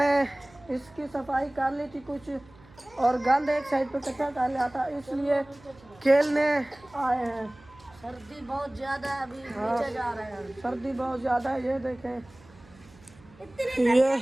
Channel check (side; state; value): right; noise; hum, 25 dB below the sound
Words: इसकी सफाई कर ली थी कुछ, और गंद एक साइड पे इकट्ठा कर लिया था, इसलिए खेलने आए हैं। सर्दी बहुत ज्यादा है, अभी नीचे जा रहे हैं। सर्दी बहुत ज़्यादा है। ये देखें ये